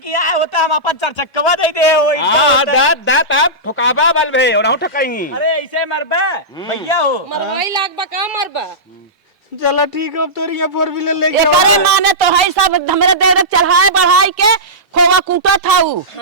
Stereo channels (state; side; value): normal; both; correlation -0.16